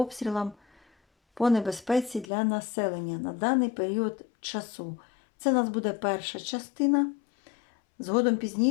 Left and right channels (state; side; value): drops out; right; at 2.2 s